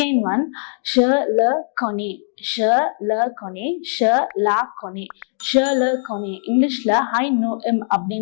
one, je le connais, je le connais, je la connais, je le connais. இங்கிலீஷ்ல I know him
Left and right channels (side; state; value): right; silent; digital silence